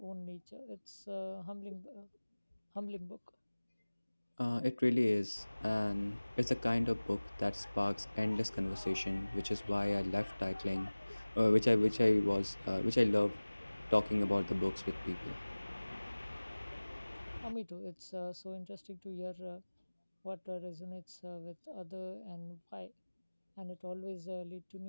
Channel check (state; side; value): inverted; both; correlation -1.00